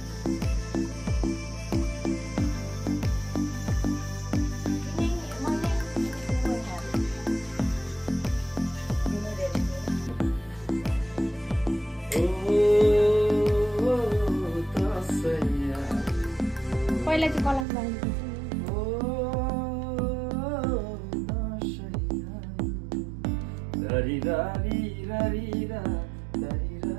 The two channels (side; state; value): left; drops out; at 17.7 s